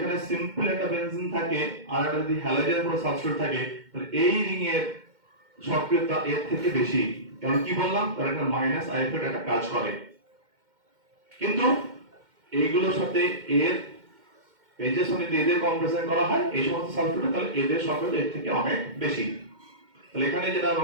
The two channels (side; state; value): left; late; 2.1 ms